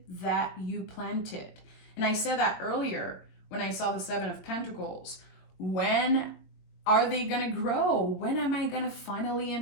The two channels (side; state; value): right; late; 22 ms